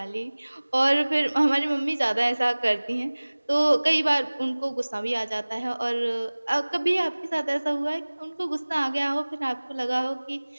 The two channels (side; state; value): both; inverted; correlation -1.00